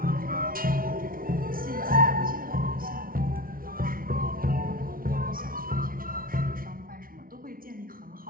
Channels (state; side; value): late; left; 0.42 ms